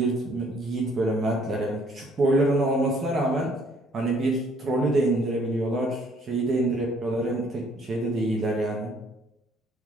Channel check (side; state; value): both; normal; correlation 0.62